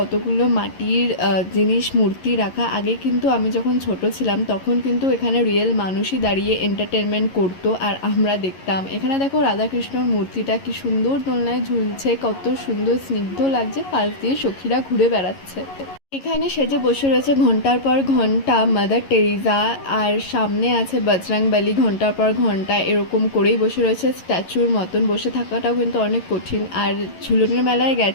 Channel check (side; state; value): right; late; 11 ms